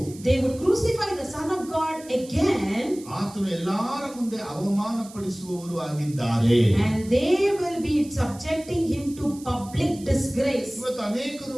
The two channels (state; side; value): noise; right; hiss, 19 dB below the sound